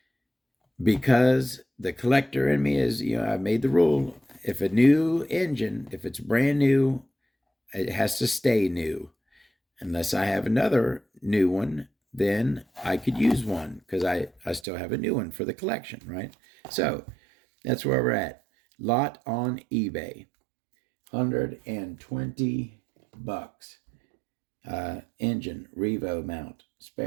because the collector in me is, I made the rule, if a new engine, if it's brand new, it has to stay new. Unless I have another new one, then I could use one because I still have a new one for the collection, right? So that's where we're at. Lot on eBay, $120. Engine, Revo mount,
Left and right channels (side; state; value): left; drops out; at 14.6 s